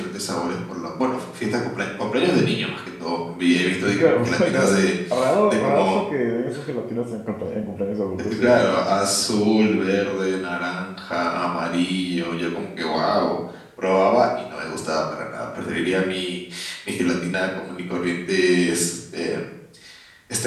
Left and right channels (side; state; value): both; identical; correlation 1.00